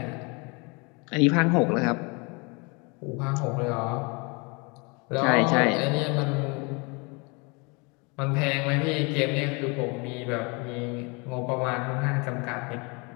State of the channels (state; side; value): quieter; right; 30.0 dB